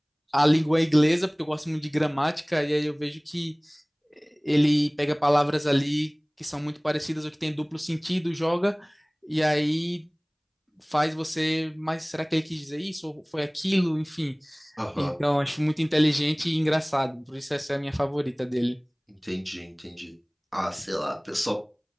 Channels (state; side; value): identical; both; correlation 1.00